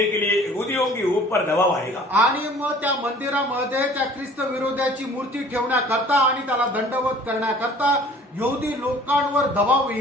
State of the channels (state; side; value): normal; both; correlation 0.50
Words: के लिए यहूदियों के ऊपर दबाव आएगा. आणि मग त्या मंदिरामध्ये त्या ख्रिस्त विरोधाची मूर्ती ठेवण्याकरता आणि त्याला दंडवत करण्याकरता यहूदी लोकांवर दबाव